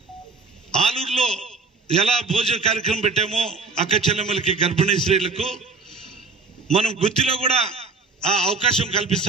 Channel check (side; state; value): left; quieter; 4.3 dB